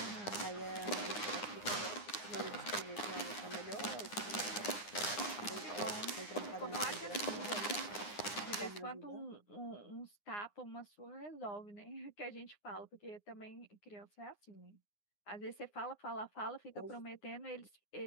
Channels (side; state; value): right; late; 9.7 ms